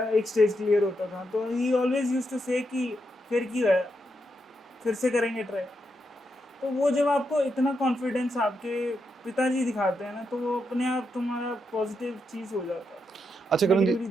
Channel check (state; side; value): normal; both; correlation 0.83